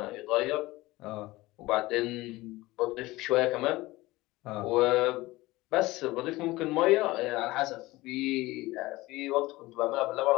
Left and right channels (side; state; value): right; quieter; 19.5 dB